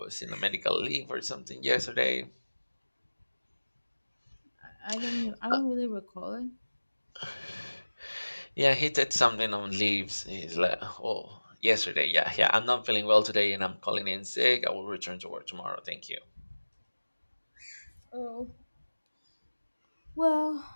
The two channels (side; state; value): both; inverted; correlation -1.00